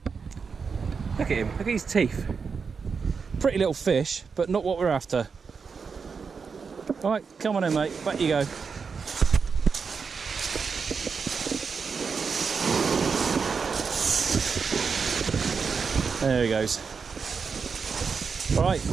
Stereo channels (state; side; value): quieter; left; 5.5 dB